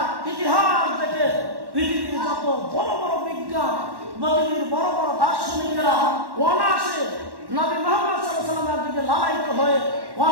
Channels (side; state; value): left; late; 1.1 ms